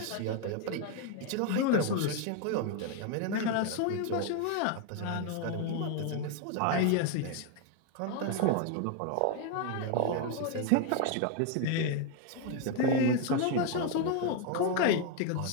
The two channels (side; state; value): both; different; correlation 0.01